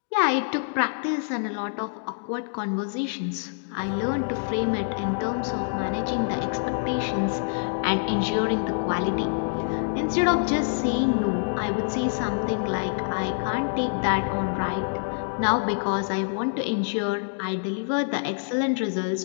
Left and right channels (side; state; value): right; silent; digital silence